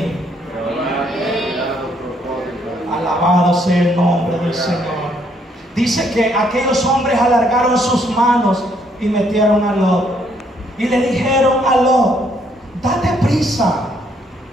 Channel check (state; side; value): normal; both; correlation 0.69